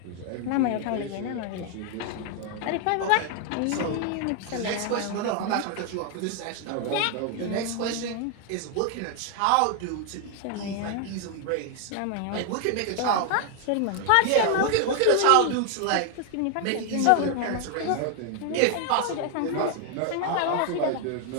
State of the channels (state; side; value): different; both; correlation 0.00